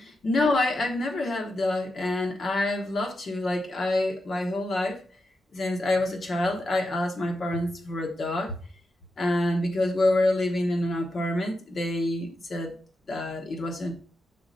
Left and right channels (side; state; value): both; normal; correlation 0.88